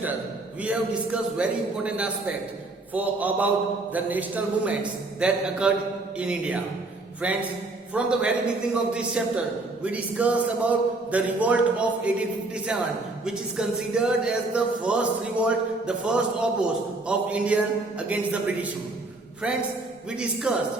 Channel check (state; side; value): quieter; left; 3.1 dB